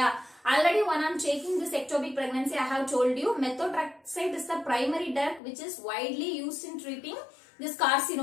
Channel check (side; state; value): right; drops out; at 5.4 s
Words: Already when I am taking this ectopic pregnancy, I have told you methotrexate is the primary drug which is widely used in treating this